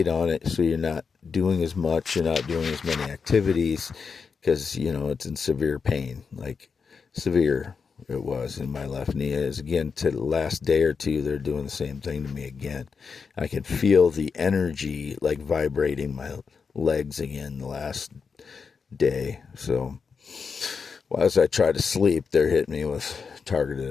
on it, so you're not doing as much, you're not doing as many activities because, it's in severe pain, like severe it was in my left knee. As again, to the last day or two, they're doing the same thing to me again. I can feel the energy like vibrating my legs again the last day. So as I try to sleep, they're hitting me with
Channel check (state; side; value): quieter; right; 5.5 dB